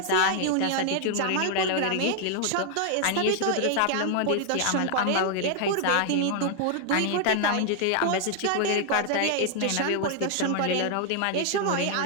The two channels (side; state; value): both; different; correlation 0.00